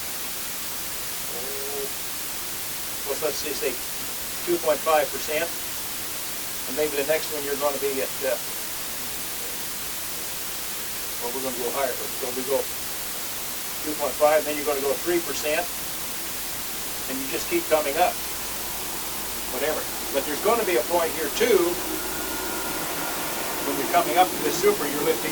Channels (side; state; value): both; identical; correlation 1.00